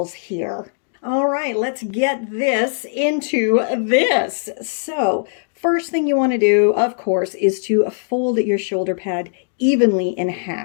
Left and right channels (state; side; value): silent; right; digital silence